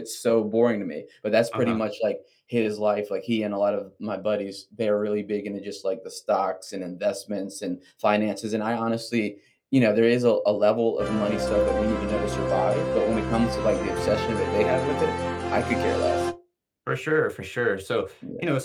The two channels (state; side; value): identical; both; correlation 1.00